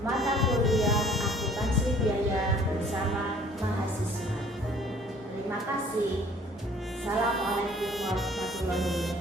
kuliah akuntansi biaya bersama mahasiswa. Terima kasih. Assalamualaikum warahmatullahi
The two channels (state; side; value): normal; both; correlation 0.55